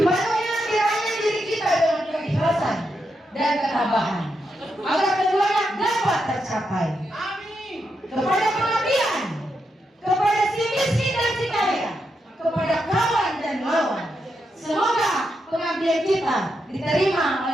kiranya diri kita dengan keikhlasan dan ketabahan, agar keduanya dapat tercapai. Kepada pengabdian, kepada si miskin dan si kaya, kepada kawan dan lawan. Semoga pengabdian kita diterima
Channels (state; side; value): normal; both; correlation 0.84